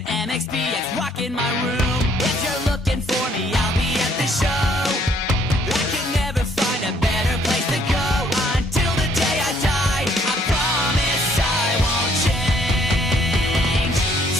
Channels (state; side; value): normal; both; correlation 0.65